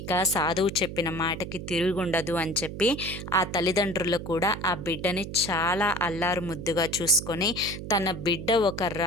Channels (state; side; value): noise; right; hum, 9 dB below the sound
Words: సాధువు చెప్పిన మాటకి తిరుగుండదు అని చెప్పి ఆ తల్లిదండ్రులు కూడా ఆ బిడ్డని చాలా అల్లారు ముద్దుగా చూసుకొని, తన బిడ్డ ఒక